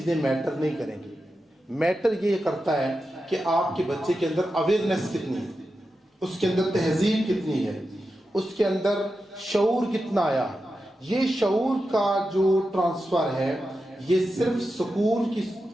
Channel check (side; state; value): both; normal; correlation 0.90